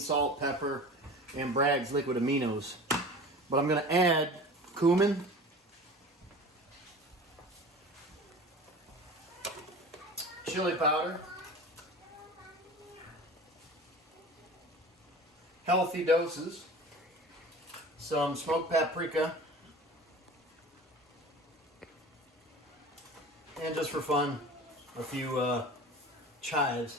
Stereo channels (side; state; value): both; normal; correlation 0.37